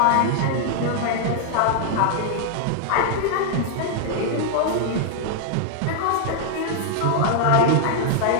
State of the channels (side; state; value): both; different; correlation -0.01